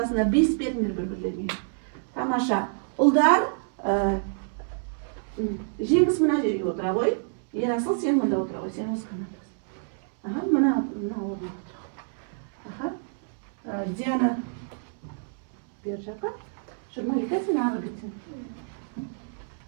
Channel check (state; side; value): silent; left; 60 dB below the other